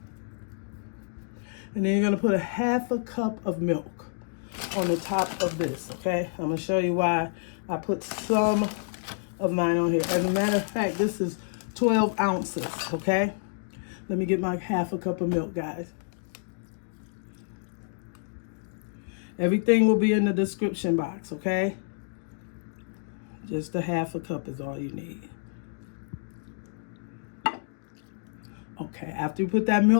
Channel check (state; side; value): silent; right; digital silence